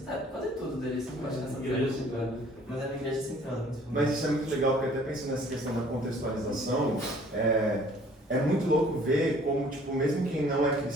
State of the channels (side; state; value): both; normal; correlation 0.55